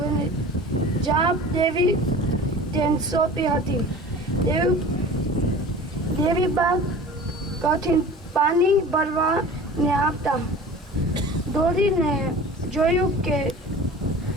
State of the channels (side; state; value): both; normal; correlation 0.40